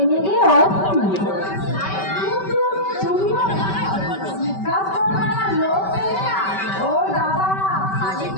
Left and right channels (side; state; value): right; late; 5.2 ms